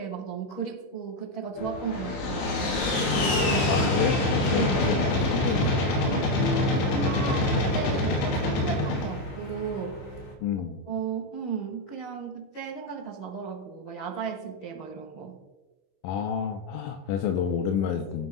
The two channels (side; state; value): right; late; 21 ms